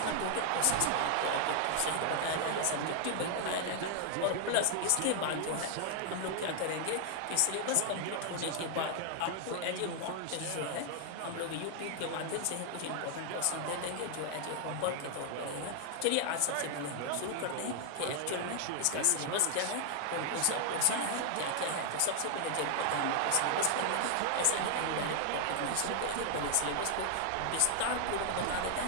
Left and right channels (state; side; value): different; both; correlation 0.00